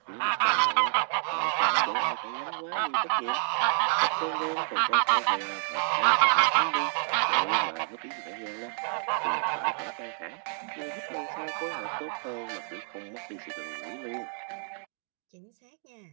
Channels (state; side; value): silent; left; 59 dB below the other